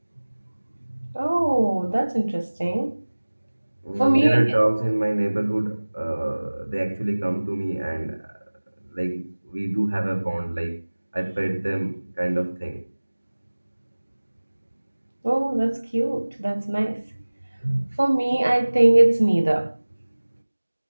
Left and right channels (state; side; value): inverted; both; correlation -1.00